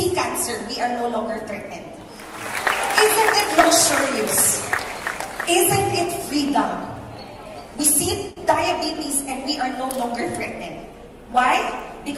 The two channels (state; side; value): identical; both; correlation 1.00